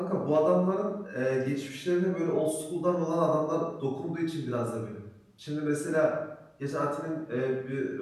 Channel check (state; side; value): identical; both; correlation 1.00